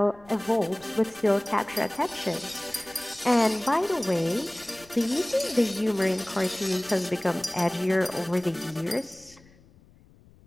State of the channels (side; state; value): left; noise; rumble, 26 dB below the sound